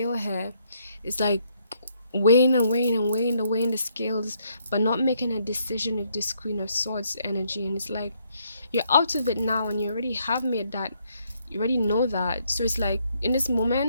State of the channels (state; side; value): inverted; both; correlation -0.72